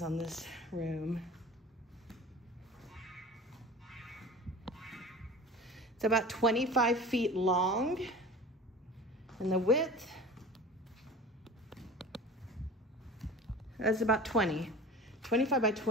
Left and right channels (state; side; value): normal; both; correlation 0.37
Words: on this room. It's about 25 feet long, and the width is about 25 by